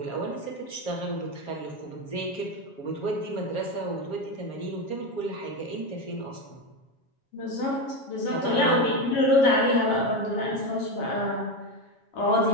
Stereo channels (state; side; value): late; right; 7.3 ms